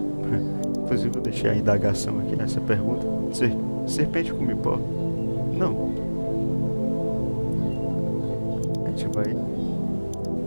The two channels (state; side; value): inverted; both; correlation -1.00